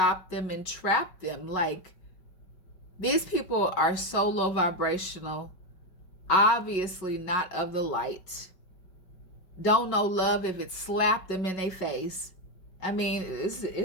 them, and trap them. Like, these people are so low vibrational, obviously not of the light, don't know love if it slapped them in their face. I mean, this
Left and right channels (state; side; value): late; right; 5.4 ms